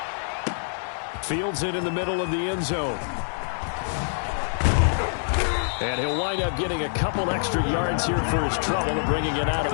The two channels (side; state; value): right; silent; digital silence